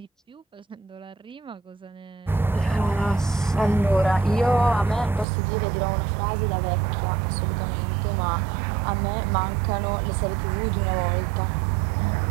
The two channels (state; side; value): drops out; left; at 5.2 s